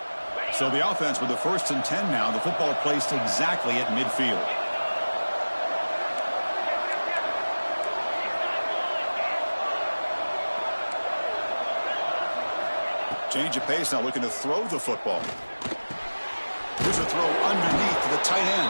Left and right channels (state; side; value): inverted; both; correlation -1.00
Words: So the offense with the 1st and 10 now. The football placed exactly at midfield. Change of pace now, looking to throw the football. Here's a throw underneath to the tight